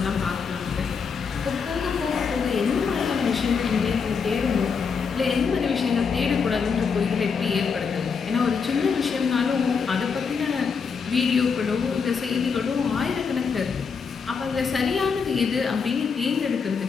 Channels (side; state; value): right; quieter; 5.7 dB